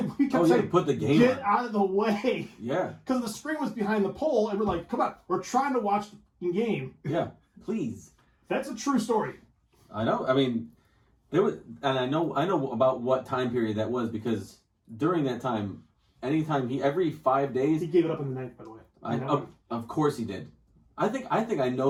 we kept saying, put the game get on. out of the way. Yeah. Because the screen was behind the pole and we're like, come on, we're trying to watch the game. Yeah. Please. That's a true story. I know. I mean, there was, and I know about what time period that was because during that time, every 5 days, He gave it up in the ninth, by the way. of course he did. I think I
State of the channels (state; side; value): identical; both; correlation 1.00